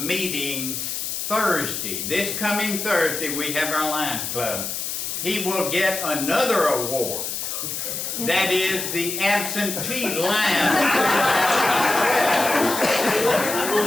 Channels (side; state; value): left; noise; hiss, 4 dB below the sound